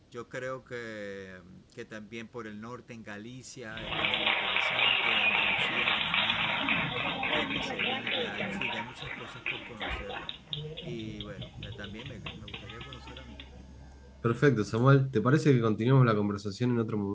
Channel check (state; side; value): identical; both; correlation 1.00